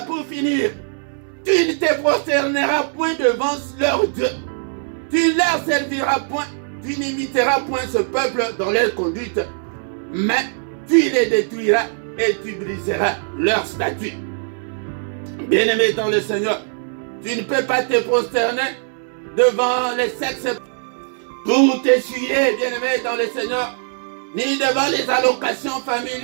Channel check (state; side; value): silent; left; 65 dB below the other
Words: pour finir, tu ne te prosterneras point devant leur Dieu. Tu ne leur serviras point, tu n'imiteras point ce peuple dans leur conduite, mais tu les détruiras et tu briseras leur statut. Bien-aimé dans le Seigneur, tu ne peux pas te prosterner devant les sexes pour t'essuyer, bien-aimé dans le Seigneur, ni devant les allocations